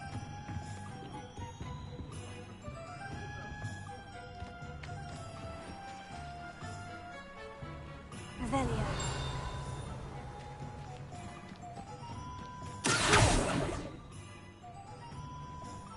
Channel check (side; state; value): both; identical; correlation 1.00